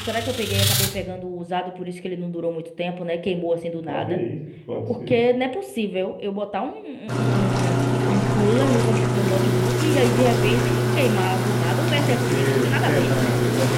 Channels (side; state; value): both; identical; correlation 1.00